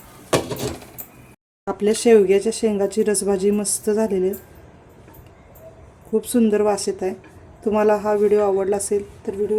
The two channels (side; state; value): both; identical; correlation 1.00